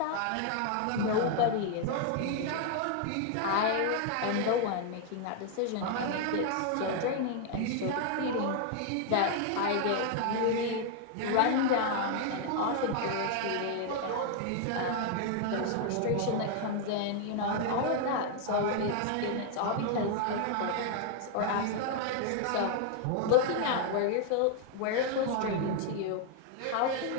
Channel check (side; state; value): both; different; correlation 0.00